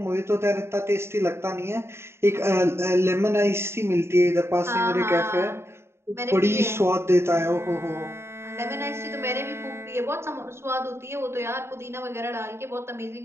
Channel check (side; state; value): left; late; 0.12 ms